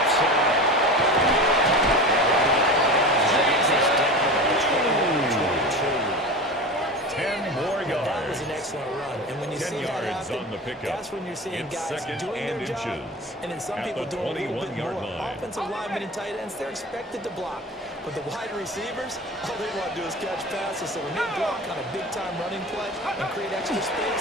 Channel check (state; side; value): normal; both; correlation 0.31